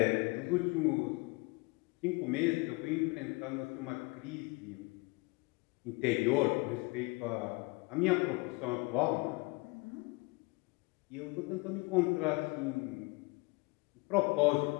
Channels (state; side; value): quieter; right; 26.9 dB